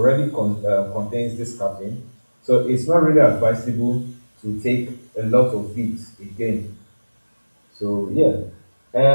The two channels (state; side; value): inverted; both; correlation -1.00